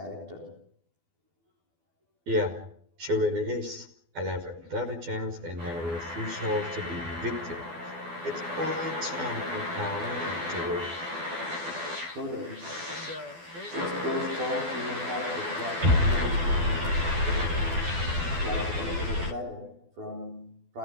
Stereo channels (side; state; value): left; late; 12 ms